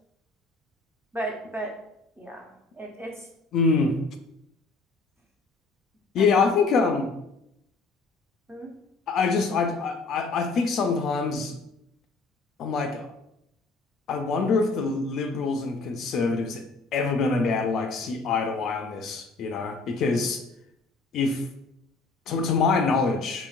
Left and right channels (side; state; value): right; quieter; 3.8 dB